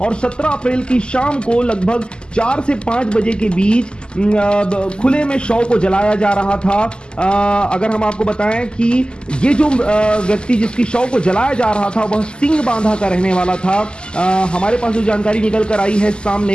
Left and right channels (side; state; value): right; late; 0.048 ms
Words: और 17 अप्रैल की शाम को लगभग 4 से 5 बजे के बीच खुले में शव को जलाया जा रहा था। अगर हम आपको बताएं कि ये जो व्यक्ति जिसकी शव को जलाया जा रहा था वह सिंह बांधा का रहने वाला था। हमारे पास जो जानकारी निकल कर आई है